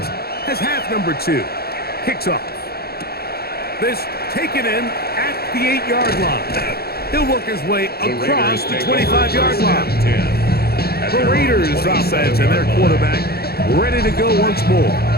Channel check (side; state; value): right; late; 0.46 ms